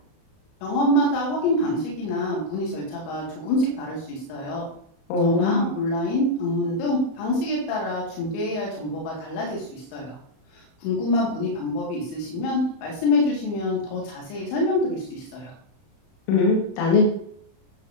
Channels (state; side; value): late; right; 31 ms